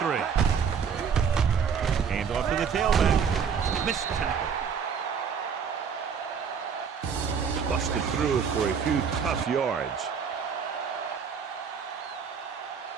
Hand off to the tailback. Missed tackle. Busted through for a few tough yards.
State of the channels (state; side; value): quieter; left; 6.7 dB